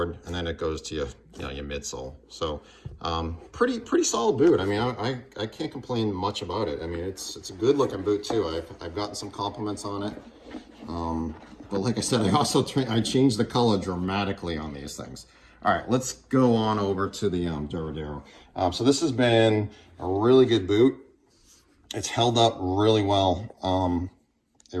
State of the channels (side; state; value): both; identical; correlation 1.00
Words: and then it goes to your midsole. So pretty solid boot. I mean, I can't complain much about it. I mean, it's a good looking boot too. I've gotten some compliments on it. But like I said, I changed the color dramatically on these things. All right, let's go on over to the Duradero. So this has been a really good boot. It's held up really well. It